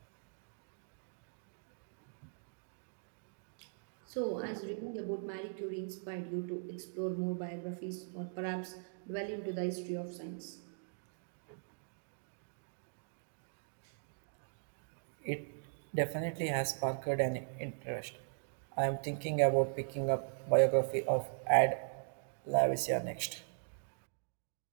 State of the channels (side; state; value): left; silent; digital silence